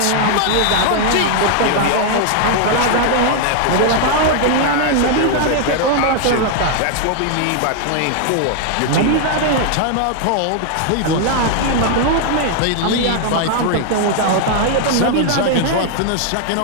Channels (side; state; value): both; different; correlation 0.00